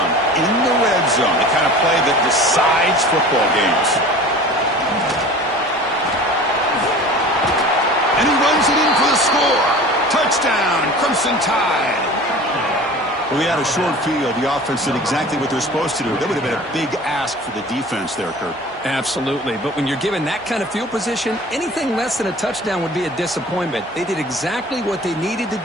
in the red zone, the kind of play that decides football games. And he runs it in for the score. Touchdown, Crimson Tide. Well, we had a short field. The offense did exactly what they're supposed to do. That would have been a big ask for the defense there, Kurt. Absolutely, but when you're given that kind of field position, anything less than a touchdown would be a disappointment. They did exactly what they needed to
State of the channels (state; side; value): normal; both; correlation 0.41